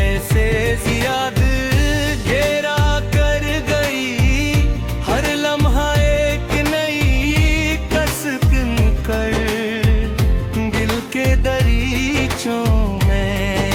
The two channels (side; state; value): both; identical; correlation 1.00